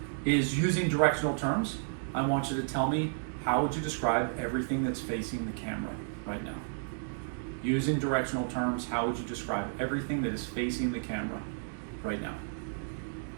is using directional terms. I want you to tell me how would you describe everything that's facing the camera right now. Using directional terms, how would you describe everything that is facing the camera right now?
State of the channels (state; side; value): silent; left; digital silence